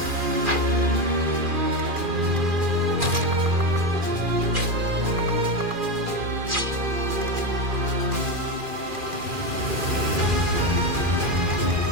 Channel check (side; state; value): left; late; 2.4 ms